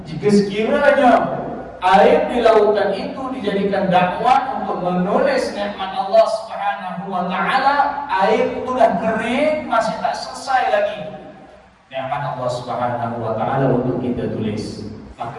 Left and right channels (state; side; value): identical; both; correlation 1.00